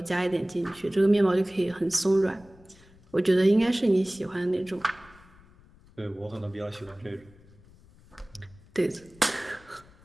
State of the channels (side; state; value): left; noise; rumble, 26 dB below the sound